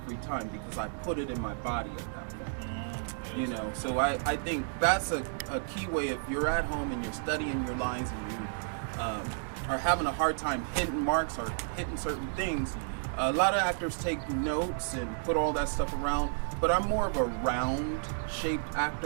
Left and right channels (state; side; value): silent; left; digital silence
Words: time because I put it in my body at that point. You know, so I think that's a key way. If you're at home and you're studying your lines and you are having a hard time hitting marks or hitting certain things, a lot of actors take notes and put all that stuff around, but I'm more of a round-shaped